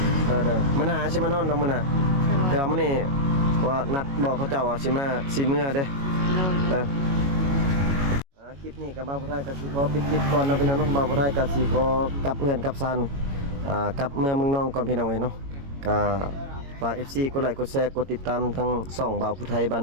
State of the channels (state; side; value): late; left; 22 ms